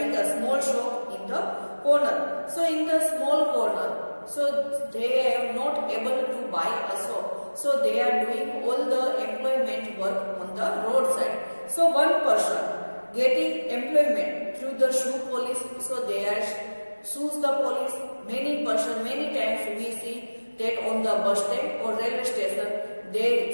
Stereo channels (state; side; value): inverted; both; correlation -1.00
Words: a small shop in the corner. So in the small corner, so they are not able to buy a shop. So they are doing all the employment work on the roadside. So one person getting employment through the shoe polish, so they are shoes the polish. Many times we see that on the bus stand or railway station,